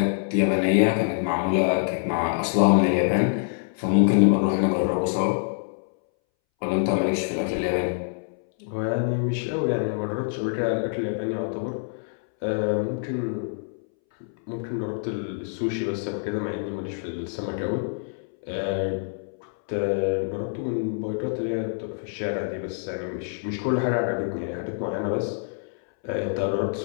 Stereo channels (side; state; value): right; silent; 61 dB below the other